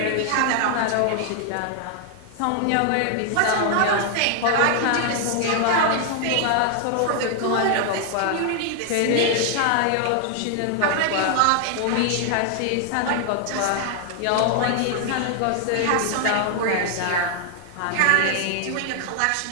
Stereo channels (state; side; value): different; both; correlation 0.00